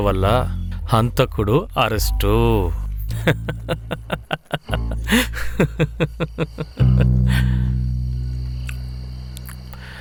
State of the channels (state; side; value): identical; both; correlation 1.00